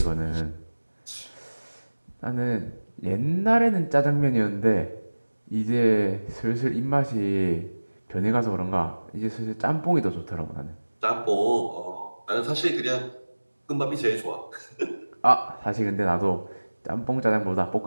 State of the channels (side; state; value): both; inverted; correlation -1.00